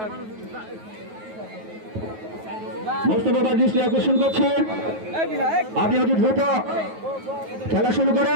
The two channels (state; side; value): late; left; 9.3 ms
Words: মুস্তফা ভাই দৃষ্টি আকর্ষণ করছে, আপনি অতি দ্রুত খেলা শুরু